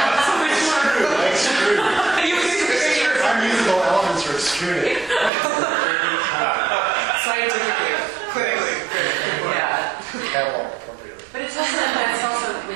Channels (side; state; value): left; drops out; at 5.3 s